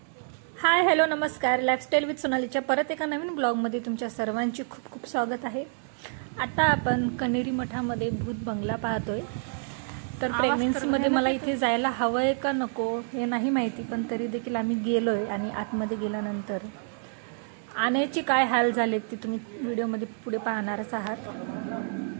हाय हॅलो नमस्कार, लाईफस्टाईल विथ सोनालीच्या परत एका नवीन ब्लॉगमध्ये तुमच्या सर्वांची खूप खूप स्वागत आहे। आता आपण कनेरी मठामध्ये भूत बंगला पाहतोय। तर प्रेग्नन्सीमध्ये मला इथे जायला हवंय का नको हे नाही माहिती, पण तरी देखील आम्ही गेलोय आणि आतमध्ये गेल्यानंतर आण्याचे काय हाल झालेत ते तुम्ही व्हिडिओमध्ये पुढे पाहणारच आहात।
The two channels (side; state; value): left; silent; 59 dB below the other